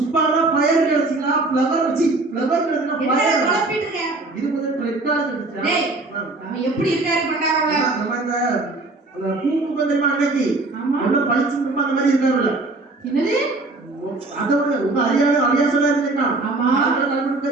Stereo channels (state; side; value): quieter; left; 3.2 dB